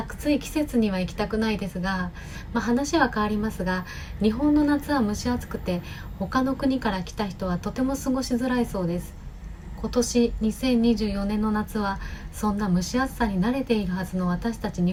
節には行きたくないですが、話は変わりますが、日本の夏は蒸し暑くて他の国から来た人はとても過ごしづらいそうです。今年2024年の夏はそんな蒸し暑さに慣れているはずの私たち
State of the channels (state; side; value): identical; both; correlation 1.00